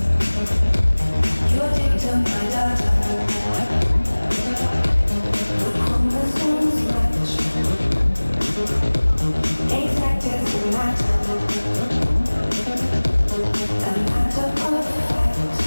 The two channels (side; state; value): both; inverted; correlation -1.00